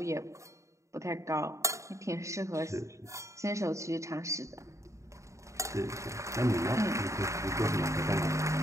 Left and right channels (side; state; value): left; late; 0.15 ms